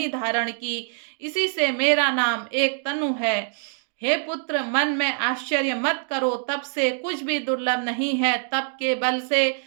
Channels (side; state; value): left; silent; 62 dB below the other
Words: धारण की, इसी से मेरा नाम एक तनु है। हे पुत्र, मन में आश्चर्य मत करो, तब से कुछ भी दुर्लभ नहीं है। तप के बल से